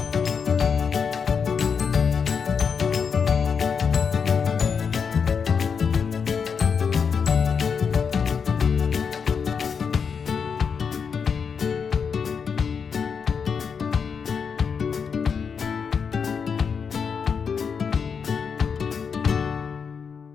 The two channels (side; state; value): right; quieter; 6.2 dB